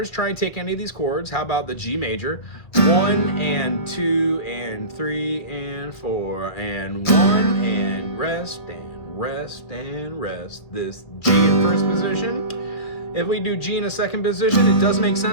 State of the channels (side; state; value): right; late; 2.4 ms